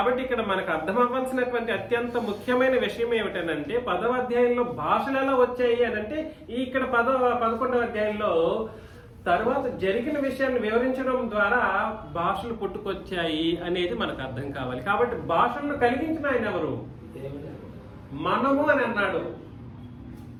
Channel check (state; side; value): identical; both; correlation 1.00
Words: ఇక్కడ మనకు అర్థం అవ్వాల్సినటువంటి అత్యంత ముఖ్యమైన విషయం ఏమిటనంటే 10వ అధ్యాయంలో భాషలు ఎలా వచ్చాయి అని అంటే ఇక్కడ 11వ అధ్యాయంలో తర్వాత జరిగిన విషయాన్ని వివరించడం ద్వారా భాషలు పుట్టుకొచ్చాయి అనేది మనకు అర్థం కావాలి. కాబట్టి భాషలను కలిగించిన ఆయన ఎవరు? మనము అని అన్నాడు.